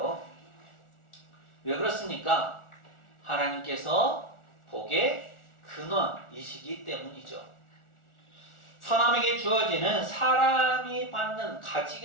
왜 그렇습니까? 하나님께서 복의 근원이시기 때문이죠. 사람에게 주어지는 사람이 받는,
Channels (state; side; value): late; right; 1.4 ms